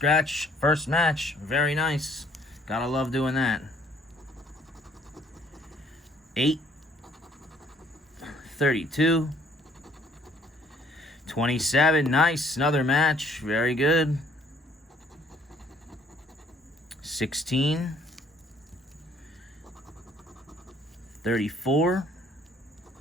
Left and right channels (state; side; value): normal; both; correlation 0.61